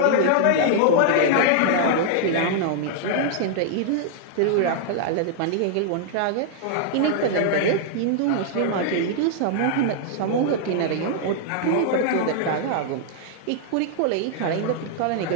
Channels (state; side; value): different; both; correlation -0.01